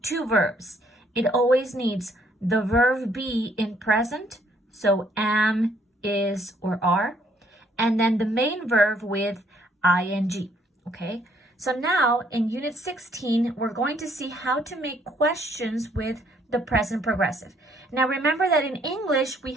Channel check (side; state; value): both; normal; correlation 0.66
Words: two verbs. It always needs the verb be in present, so am, is, or are, and then the main verb with ing, okay? So now in Unit 16, we're going to see how to make questions with the present progressive. Now remember that in English, we